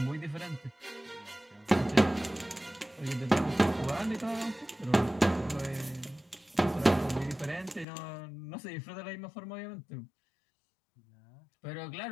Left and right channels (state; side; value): drops out; right; at 7.9 s